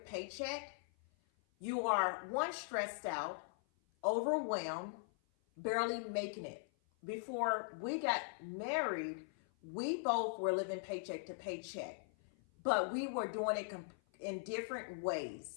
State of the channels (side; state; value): right; silent; 51 dB below the other